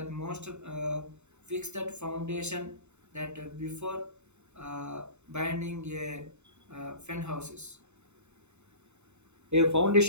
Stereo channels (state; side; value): late; left; 0.82 ms